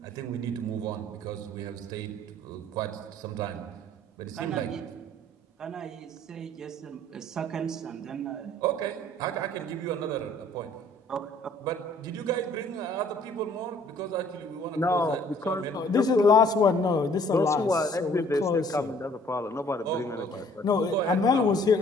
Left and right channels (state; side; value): normal; both; correlation 0.57